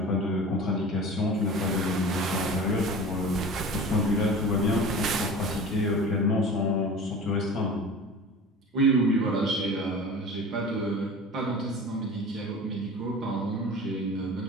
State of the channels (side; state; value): both; normal; correlation 0.37